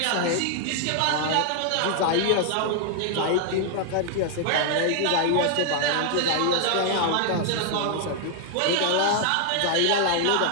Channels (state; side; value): different; both; correlation 0.00